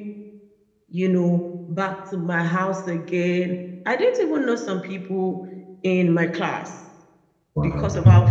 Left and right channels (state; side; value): identical; both; correlation 1.00